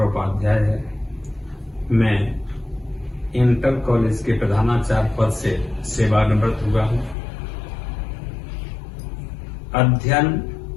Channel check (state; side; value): drops out; right; at 7.2 s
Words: उपाध्याय है। मैं इंटर कॉलेज के प्रधानाचार्य पद से सेवानिवृत्त हुआ हूँ। अध्ययन